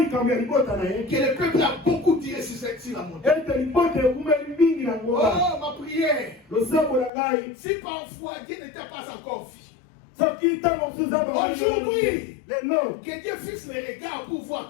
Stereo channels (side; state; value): right; drops out; at 7.1 s